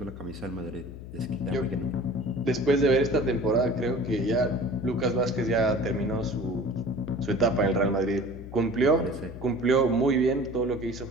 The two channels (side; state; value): left; noise; hum, 12 dB below the sound